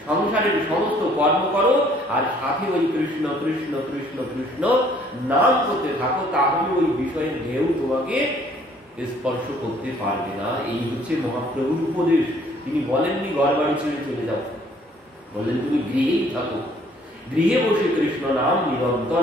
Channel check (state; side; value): normal; both; correlation 0.60